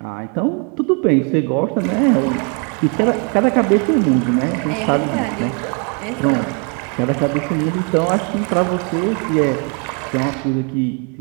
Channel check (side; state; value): left; quieter; 36.2 dB